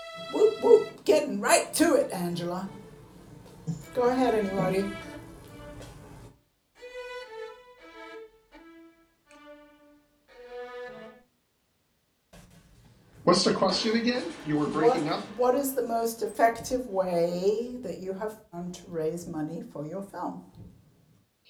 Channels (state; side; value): identical; both; correlation 1.00